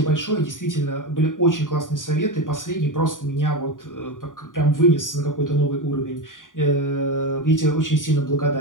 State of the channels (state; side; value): late; right; 0.88 ms